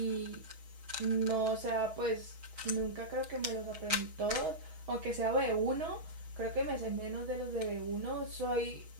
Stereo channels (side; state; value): left; late; 6.2 ms